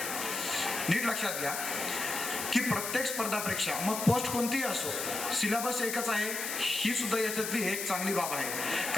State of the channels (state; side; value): noise; left; hiss, 4 dB below the sound